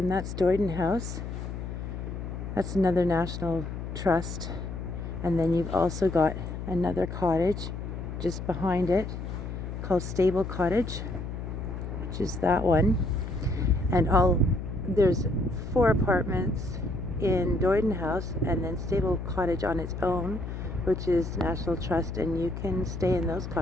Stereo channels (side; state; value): left; noise; hum, 6 dB below the sound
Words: that's Doyden House. That's another National Trust. And then you've also got another cottage just behind it called Stable Cottage, which is that one. And there's 4 apartments in Doyden House, and then Stable Cottage on its own, which is National Trust, and you can stay in those